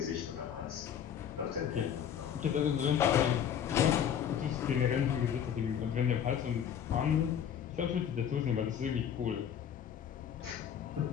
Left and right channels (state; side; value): quieter; right; 8.8 dB